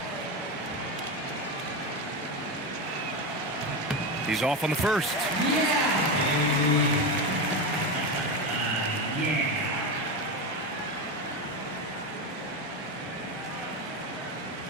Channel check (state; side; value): normal; both; correlation 0.16